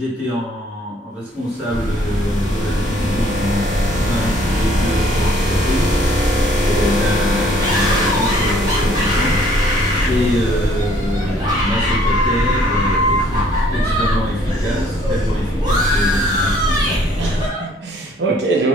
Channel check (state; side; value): normal; both; correlation 0.61